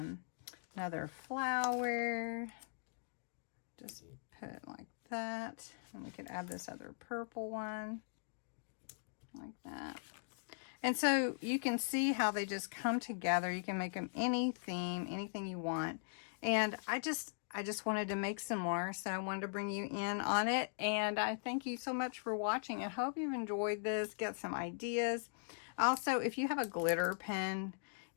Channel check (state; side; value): silent; right; digital silence